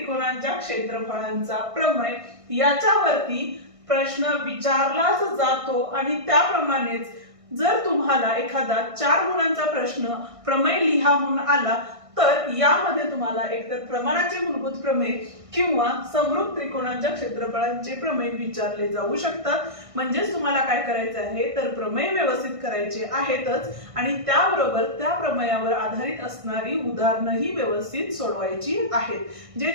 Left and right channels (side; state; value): left; late; 1.6 ms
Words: क्षेत्रफळांचा प्रमेय. याच्यावरती प्रश्न विचारलाच जातो, आणि त्याप्रमाणेच जर तुम्हाला एखादा 4 गुणांचा प्रश्न प्रमेय लिहा म्हणून आला तर यामध्ये तुम्हाला एकतर प्रमाणाचे मूलभूत प्रमेय किंवा समरूप त्रिकोणांच्या क्षेत्रफळांचे प्रमेय विचारले जाऊ शकतात. म्हणजेच तुम्हाला काय करायचं आहे तर प्रमेय व्यवस्थित करायचे आहेतच, आणि त्याबरोबर त्या प्रमेयावर आधारित असणारी उदाहरणंही व्यवस्थित सोडवायची आहेत. जे